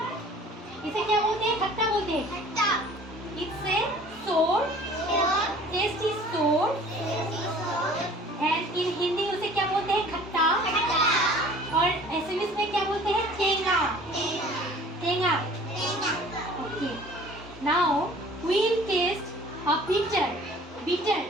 इसे क्या बोलते हैं? खट्टा बोलते हैं. It's a sour. Taste is sour. And in Hindi उसे क्या बोलते हैं? खट्टा. और एसएमएस में क्या बोलते हैं? टेंगा. Okay. Now we'll taste a bitter.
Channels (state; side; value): normal; both; correlation 0.49